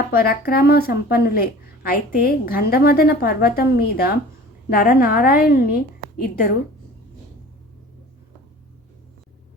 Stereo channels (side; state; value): both; normal; correlation 0.43